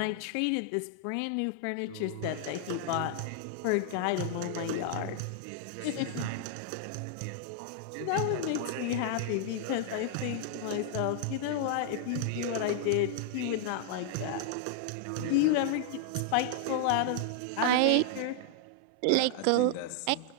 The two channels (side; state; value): both; different; correlation 0.00